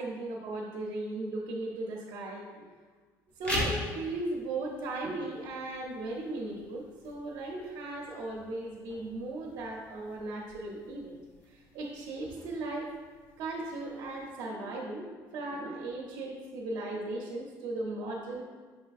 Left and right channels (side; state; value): both; normal; correlation 0.59